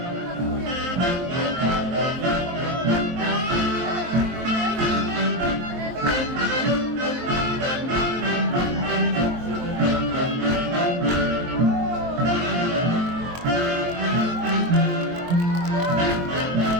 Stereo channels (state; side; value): late; left; 23 ms